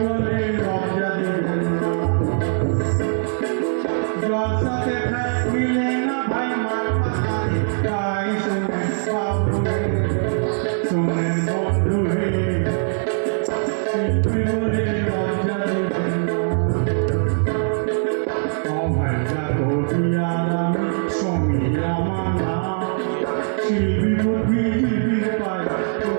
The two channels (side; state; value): left; silent; digital silence